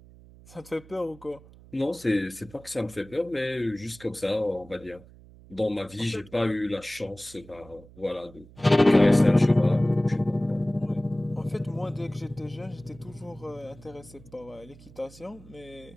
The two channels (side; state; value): right; noise; hum, 22 dB below the sound